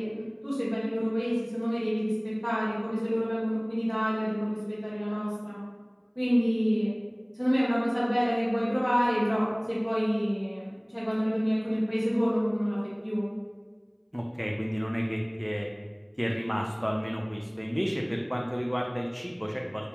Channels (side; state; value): both; identical; correlation 1.00